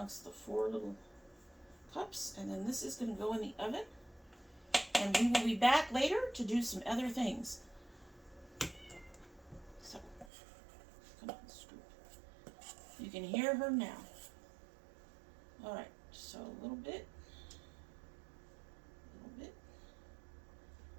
the 4 little cups, and then this is going to go in the oven, and we will be back later to do some other things. So, come on, scoop. You can hear her now. Alright, so a little bit.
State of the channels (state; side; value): drops out; left; at 10.3 s